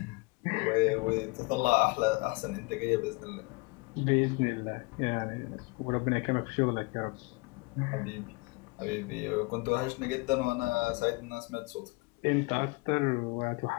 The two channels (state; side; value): quieter; right; 27.6 dB